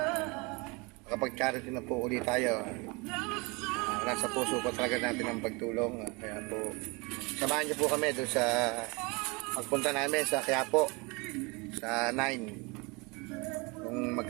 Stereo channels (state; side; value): quieter; left; 27.9 dB